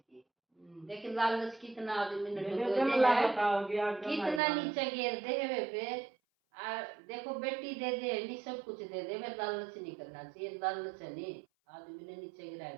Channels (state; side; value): drops out; left; at 4.4 s